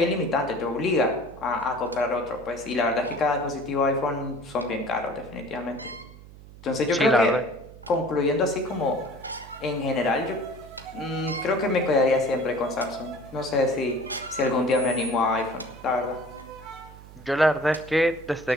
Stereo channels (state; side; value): noise; right; hum, 19 dB below the sound